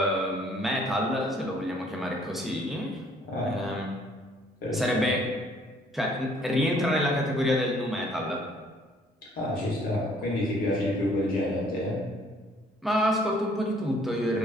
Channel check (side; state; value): both; normal; correlation 0.61